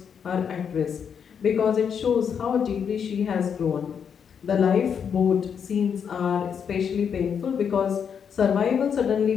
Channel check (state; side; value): quieter; right; 7.3 dB